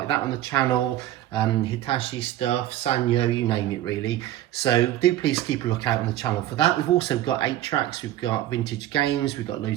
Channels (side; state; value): left; quieter; 13.6 dB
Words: that on the channel. Hitachi stuff, Sanyo, you name it really. So do please keep a look out on the channel for that. We've also got 8-tracks, we've got vintage games, we've got